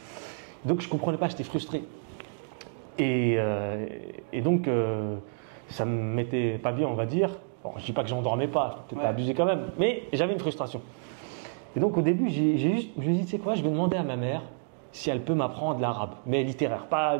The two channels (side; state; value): left; quieter; 38.6 dB